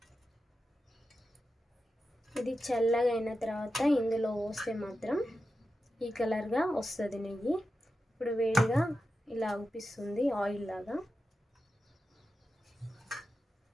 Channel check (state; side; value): normal; both; correlation 0.90